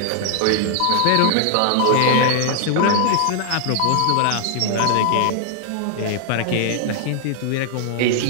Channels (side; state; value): both; different; correlation 0.00